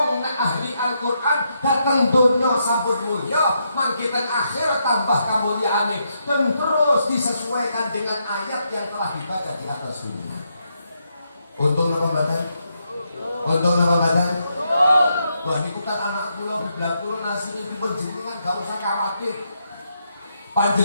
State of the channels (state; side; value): inverted; both; correlation -0.80